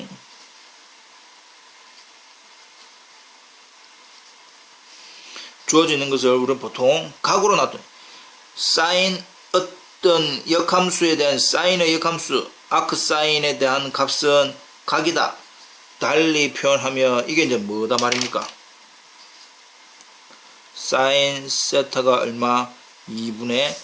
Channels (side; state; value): both; identical; correlation 1.00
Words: 주어져 있는 것을 우리는 보통 각으로 놔둬요. 사인 어떤 역함수에 대한 사인의 역함수 아크 사인에 대한 값은 각이다. 달리 표현하면 이게 이제 뭐다 말입니까? 사인 세타가 얼마? 2분의